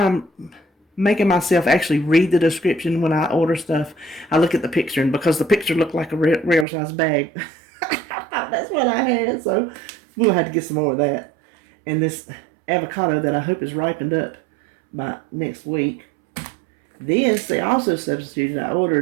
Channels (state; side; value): drops out; left; at 6.7 s